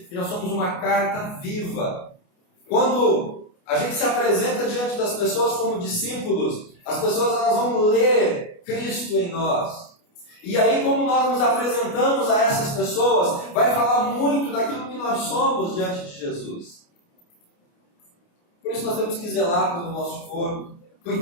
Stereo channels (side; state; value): right; late; 29 ms